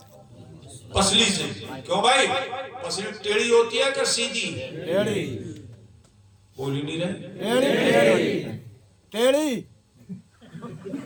پسلی سے۔ کیوں بھائی؟ پسلی ٹیڑھی ہوتی ہے کہ سیدھی؟ بول ہی نہیں رہے، ٹیڑھی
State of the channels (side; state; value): both; identical; correlation 1.00